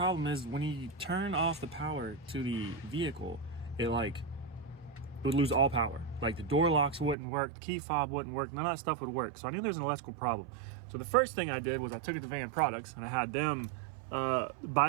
is when you turn off the power to the vehicle, it would lose all power. Like the door locks wouldn't work, the key fob wouldn't work, none of that stuff would work. So I knew there was an electrical problem. So the first thing I did was I took it to Van Products and I had them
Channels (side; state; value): left; drops out; at 7.2 s